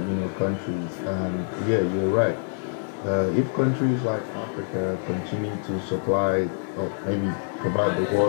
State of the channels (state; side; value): silent; right; digital silence